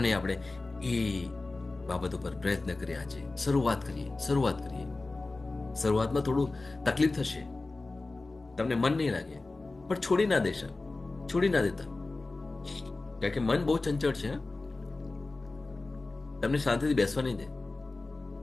નહીં આપણે એ બાબત ઉપર પ્રયત્ન કરીએ, આજે શરૂઆત કરીએ. શરૂઆતમાં થોડું તકલીફ થશે, તમને મન નહીં લાગે, પણ છોડી ના દેતા, કારણ કે મન બહુ ચંચળ છે. તમને શાંતિથી બેસવા નહીં દે.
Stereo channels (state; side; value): quieter; right; 3.3 dB